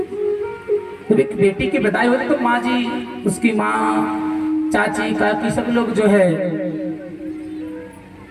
तो एक बेटी की विदाई होती तो माँ जी, उसकी माँ, चाची, काकी सब लोग जो है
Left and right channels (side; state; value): both; identical; correlation 1.00